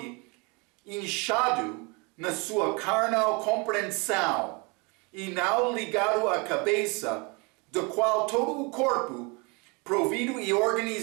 inchado na sua carnal compreensão, e não ligado à cabeça, do qual todo o corpo, provido e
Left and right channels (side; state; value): left; quieter; 29.8 dB